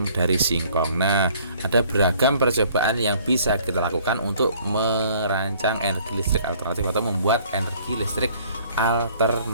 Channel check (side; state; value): both; inverted; correlation -0.57